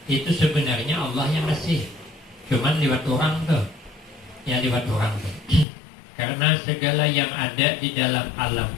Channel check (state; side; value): drops out; right; at 5.7 s